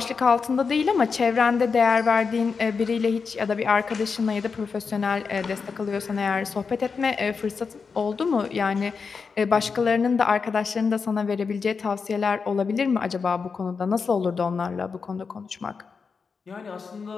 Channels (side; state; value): right; quieter; 5.3 dB